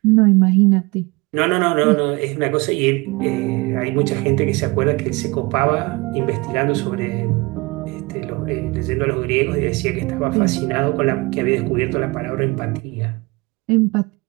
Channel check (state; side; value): quieter; left; 25.0 dB